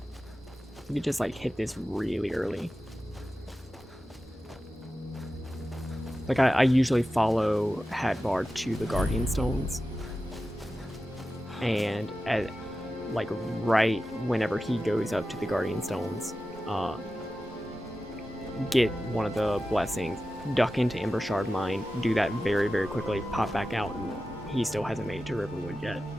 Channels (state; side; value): normal; both; correlation 0.93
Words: You could just like hit this really early. Like I usually follow Hadvar to the Guardian Stones. And at like right whenever he goes up to the Guardian Stones, get one of the blessings, duck into Ember Shard Mine, do that very, very quickly, pop back out, and he still hasn't made it to Riverwood yet.